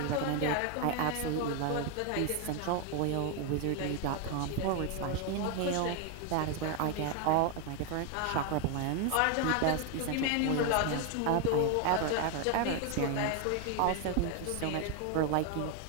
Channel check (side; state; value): both; different; correlation 0.01